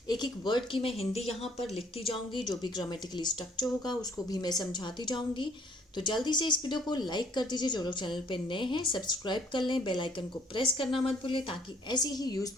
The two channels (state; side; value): normal; both; correlation 0.61